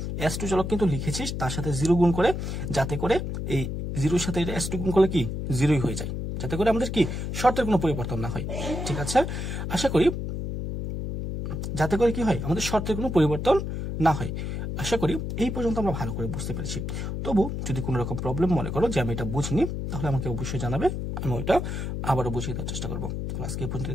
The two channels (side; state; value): left; noise; hum, 4 dB below the sound